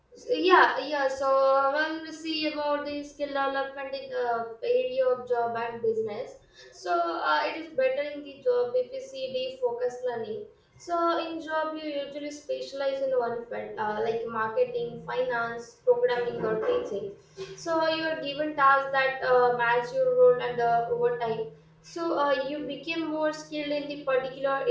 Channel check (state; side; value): identical; both; correlation 1.00